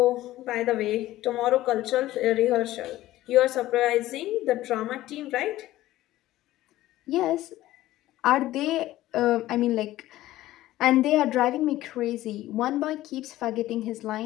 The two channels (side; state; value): right; quieter; 15.5 dB